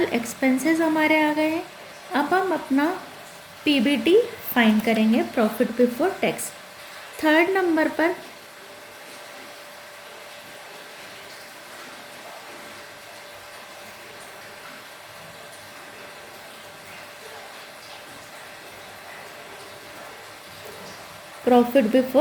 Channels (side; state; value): both; identical; correlation 1.00